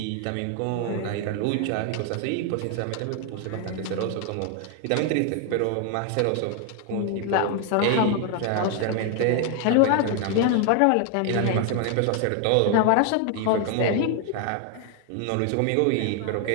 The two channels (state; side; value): different; both; correlation 0.00